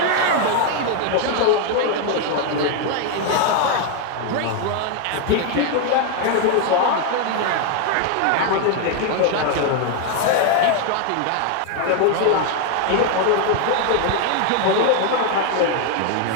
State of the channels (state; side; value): different; both; correlation 0.01